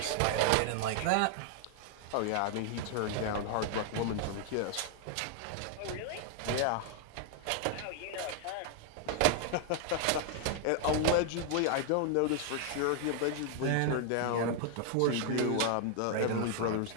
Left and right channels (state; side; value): different; both; correlation 0.00